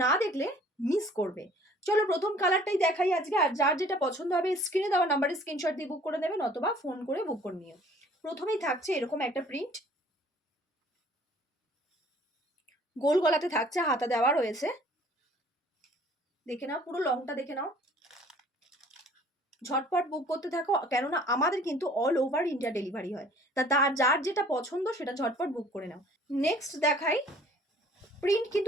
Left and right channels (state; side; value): normal; both; correlation 0.54